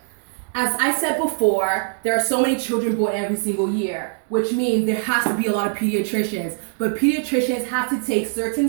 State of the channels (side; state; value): left; silent; digital silence